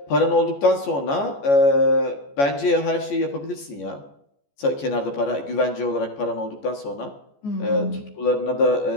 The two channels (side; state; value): right; late; 14 ms